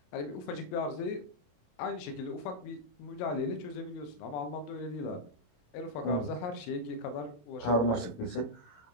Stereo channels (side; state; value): right; late; 27 ms